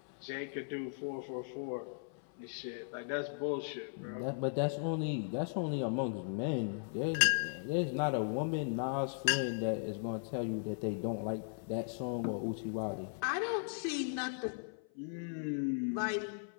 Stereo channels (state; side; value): silent; right; 53 dB below the other